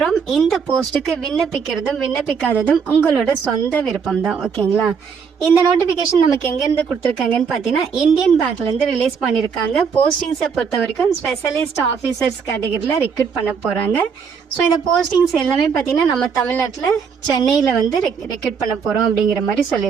இந்த போஸ்ட்டுக்கு விண்ணப்பிக்கிறதும் விண்ணப்பிக்காததும் உங்களோட சொந்த விருப்பம் தான். ஓகேங்களா? இந்த நோட்டிஃபிகேஷன் நமக்கு எங்கேருந்து கொடுத்துருக்காங்கன்னு பார்த்தீங்கன்னா இந்தியன் பேங்க்லேருந்து ரிலீஸ் பண்ணியிருக்காங்க. போஸ்டிங்ஸை பொறுத்த வரைக்கும் ஸ்பெஷலிஸ்ட் ஆஃபீஸர்ஸ் கேட்டகரியில் ரெக்ரூட் பண்ண போகிறாங்க. ஸோ இந்த போஸ்டிங்ஸ் எல்லாமே பார்த்தீங்கன்னா நம்ம தமிழ்நாட்டில் சென்னையில் வந்து ரெக்ரூட் பண்ண போகிறோம் அப்படிங்கிற மாதிரி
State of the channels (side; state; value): left; quieter; 6.2 dB